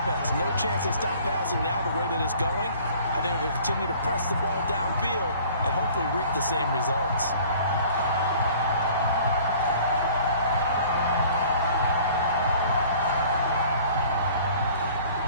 No chance they stop passing now the way that it's going. I think they'll continue to press the ball downfield and hopefully reap the same results.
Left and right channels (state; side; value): inverted; both; correlation -0.51